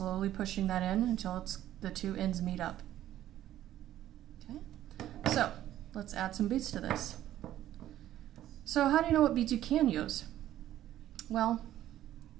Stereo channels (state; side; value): quieter; left; 12.7 dB